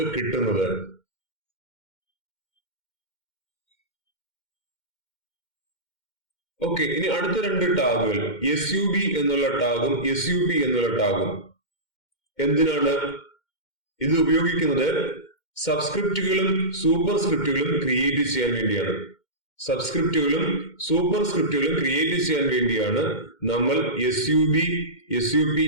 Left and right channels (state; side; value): late; right; 2.1 ms